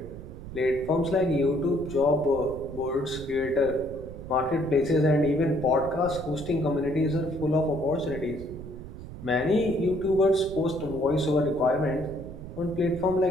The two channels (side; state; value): right; noise; rumble, 12 dB below the sound